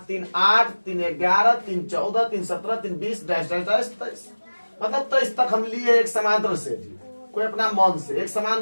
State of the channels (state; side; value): inverted; both; correlation -1.00